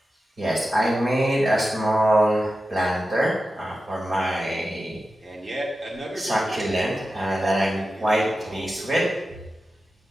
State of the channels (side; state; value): both; normal; correlation 0.92